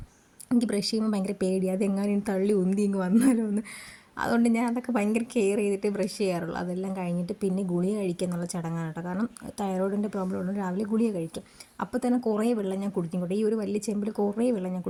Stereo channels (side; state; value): both; identical; correlation 1.00